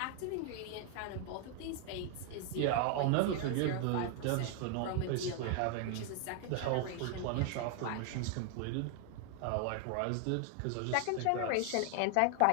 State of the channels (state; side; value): different; both; correlation 0.00